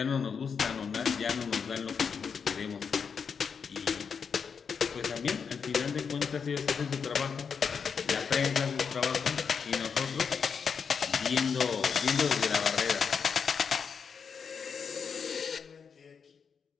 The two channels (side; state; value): right; quieter; 6.3 dB